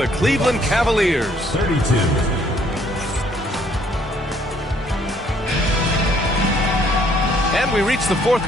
Cleveland Cavaliers. 32. And we reach the 4th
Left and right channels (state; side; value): normal; both; correlation 0.64